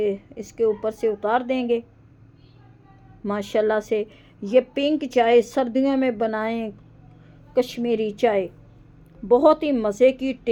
इसके ऊपर से उतार देंगे। माशाल्लाह से ये पिंक चाय सर्दियों में बनाएं, कश्मीरी चाय बहुत ही मज़े की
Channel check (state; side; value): identical; both; correlation 1.00